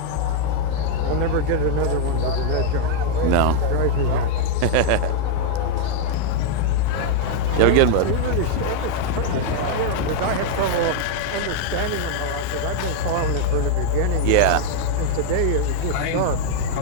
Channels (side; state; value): both; different; correlation 0.00